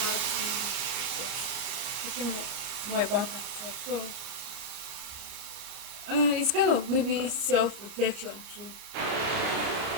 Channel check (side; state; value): left; late; 30 ms